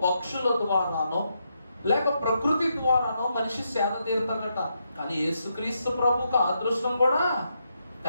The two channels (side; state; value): both; inverted; correlation -0.81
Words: పక్షుల ద్వారానో లేక ప్రకృతి ద్వారానో మనిషి సేద తీరుతాడట. కానీ యేసుక్రీస్తు ప్రభుకు అదృష్టం కూడా